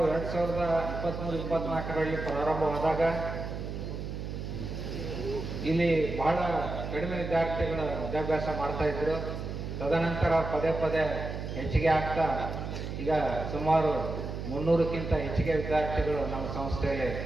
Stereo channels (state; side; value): noise; right; hum, 6 dB below the sound